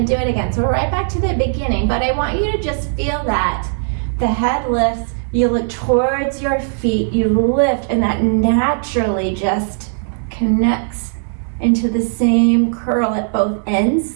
do it again. So we're right back to the beginning, but I want you to just feel that. The head lifts, you look towards your feet, you lift, and that naturally just connects into the same curl at both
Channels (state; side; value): silent; left; digital silence